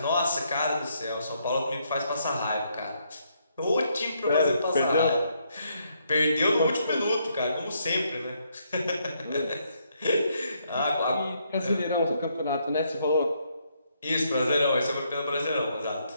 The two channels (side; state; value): both; inverted; correlation -0.74